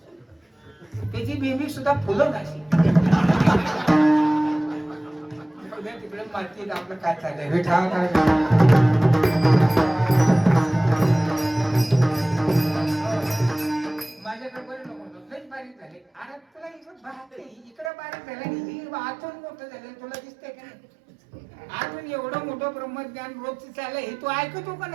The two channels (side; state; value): left; drops out; at 17.9 s